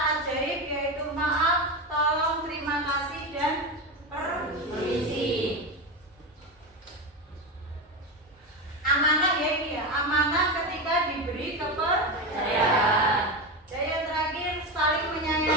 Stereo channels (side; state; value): both; normal; correlation 0.18